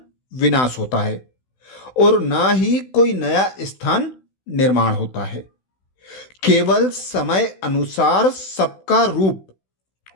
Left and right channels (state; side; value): late; right; 16 ms